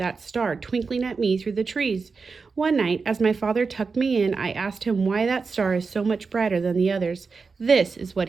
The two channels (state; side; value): quieter; left; 4.7 dB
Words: star twinkling at me through the trees. One night, as my father tucked me in, I asked him why that star is so much brighter than the others. This is what